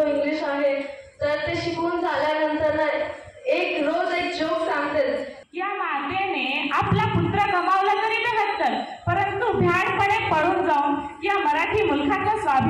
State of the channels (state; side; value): identical; both; correlation 1.00